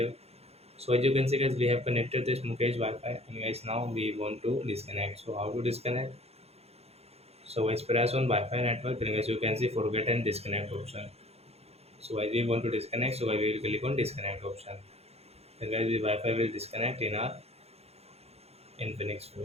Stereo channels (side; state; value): left; late; 0.30 ms